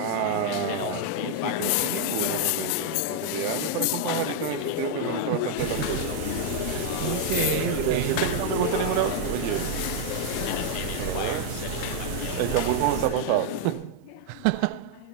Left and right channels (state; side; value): different; both; correlation 0.00